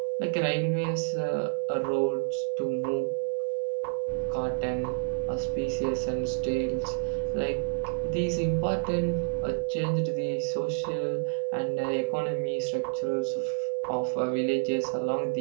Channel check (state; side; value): silent; left; 59 dB below the other